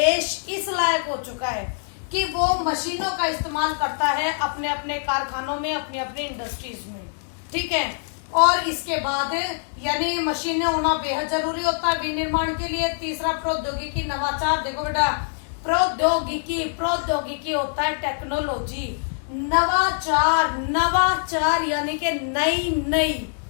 इस लायक हो चुका है कि वो मशीनों का इस्तेमाल करता है अपने अपने कारखानों में, अपनी अपनी इंडस्ट्रीज में, ठीक है। और इसके बाद यानी मशीनें होना बेहद जरूरी होता है विनिर्माण के लिए। तीसरा प्रौद्योगिकी नवाचार। देखो बेटा, प्रौद्योगिकी होता है टेक्नोलॉजी, नवाचार यानी कि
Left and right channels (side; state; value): right; silent; digital silence